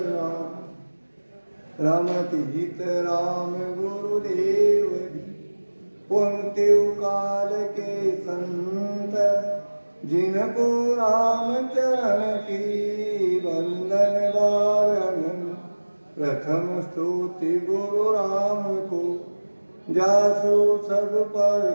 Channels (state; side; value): inverted; both; correlation -1.00